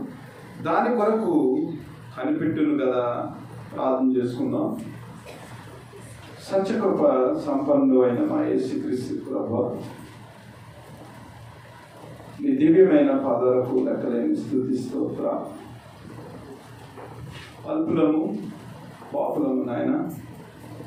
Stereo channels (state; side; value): identical; both; correlation 1.00